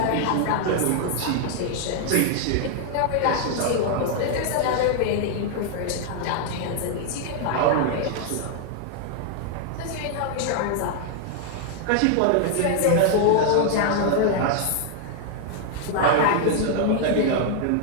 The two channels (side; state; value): both; different; correlation 0.00